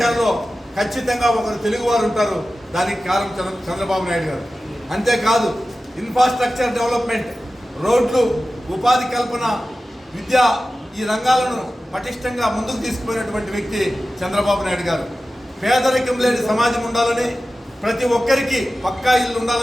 ఖచ్చితంగా ఒకరు తెలుగువారు ఉంటారు. దానికి కారణం చంద్రబాబు నాయుడు గారు. అంతేకాదు ఇన్ఫ్రాస్ట్రక్చర్ డెవలప్మెంట్, రోడ్లు, ఉపాధి కల్పన, విద్య, ఈ రంగాలను పటిష్టంగా ముందుకు తీసుకుపోయినటువంటి వ్యక్తి చంద్రబాబు నాయుడు గారు. పేదరికం లేని సమాజం ఉండాలని, ప్రతి ఒక్కరికి పక్కా ఇల్లు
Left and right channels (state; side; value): normal; both; correlation 0.95